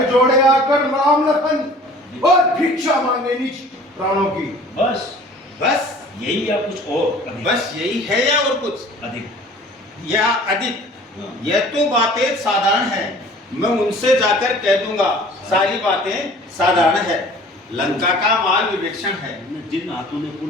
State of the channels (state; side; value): normal; both; correlation 0.48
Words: जोड़े आकर राम लखन और भिक्षा मांगे निज प्राणों की। बस यही या कुछ और? बस यही है या और कुछ अधिक या अधिक? यह तो बातें साधारण है, मैं उनसे जाकर कह दूंगा सारी बातें साधारण है। लंका का माल विभीषण है, जिन